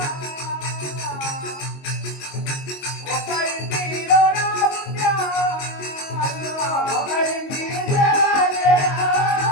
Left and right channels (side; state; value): right; late; 22 ms